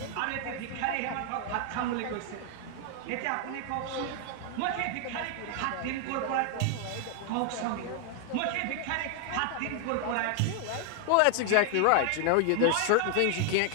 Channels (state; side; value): different; both; correlation 0.00